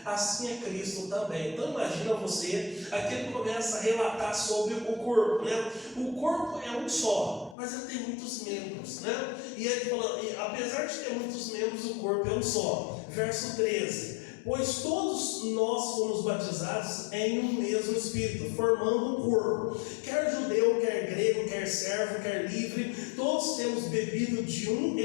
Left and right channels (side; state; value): right; drops out; at 7.6 s